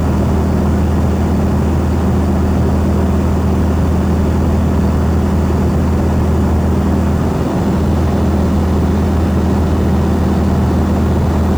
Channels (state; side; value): noise; left; hiss, 28 dB below the sound